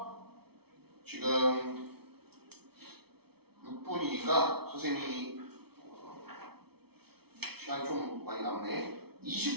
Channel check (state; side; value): late; left; 0.96 ms